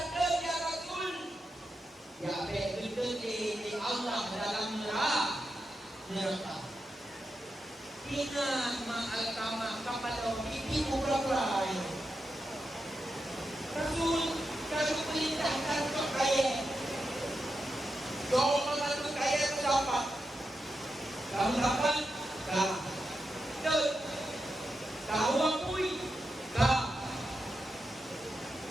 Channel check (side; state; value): both; normal; correlation 0.87